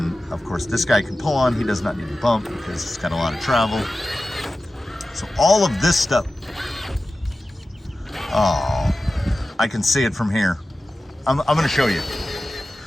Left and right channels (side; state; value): both; normal; correlation 0.94